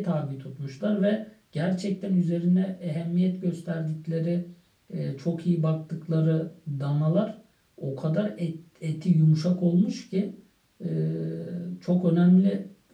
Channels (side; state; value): both; identical; correlation 1.00